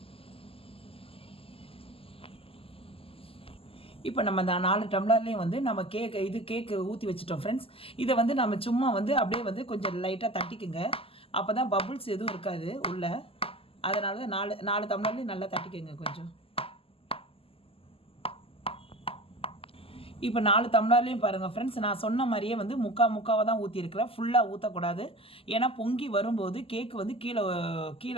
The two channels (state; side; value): late; right; 0.27 ms